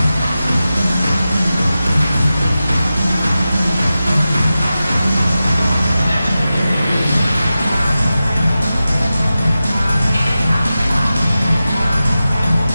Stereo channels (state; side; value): inverted; both; correlation -0.93